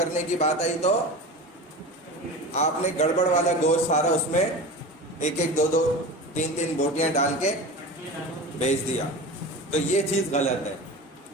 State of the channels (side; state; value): both; normal; correlation 0.31